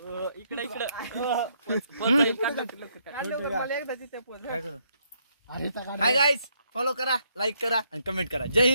इकडे इकडे हाय गाईज फॉलो करा लाईक करा आणि कमेंट करा. जय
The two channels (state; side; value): inverted; both; correlation -0.73